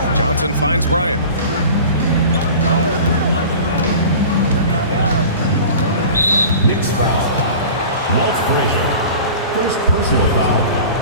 Johnson finds Bryant. Knicks foul. Walt Frazier. First personal foul.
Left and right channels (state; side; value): inverted; both; correlation -0.39